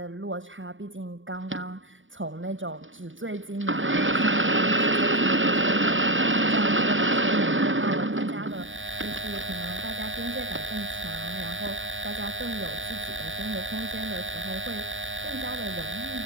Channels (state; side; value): late; left; 0.56 ms